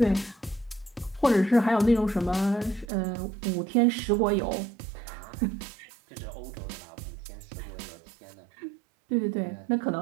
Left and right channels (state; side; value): drops out; left; at 2.9 s